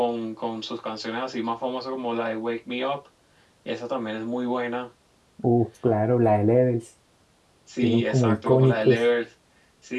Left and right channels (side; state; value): both; identical; correlation 1.00